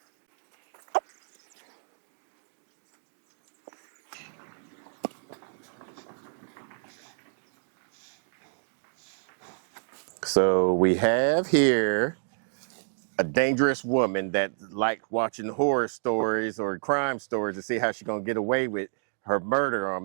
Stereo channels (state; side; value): silent; left; digital silence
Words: So we have here a dangerous woman that like watching horror stories or crime stories to see how she's gonna get away with her murder on